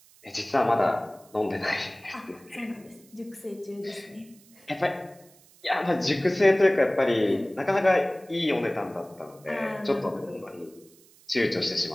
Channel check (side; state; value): right; noise; hiss, 27 dB below the sound